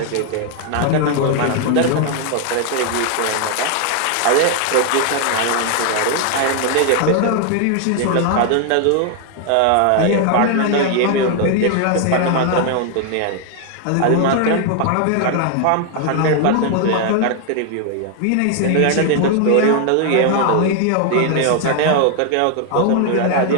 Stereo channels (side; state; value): both; different; correlation 0.00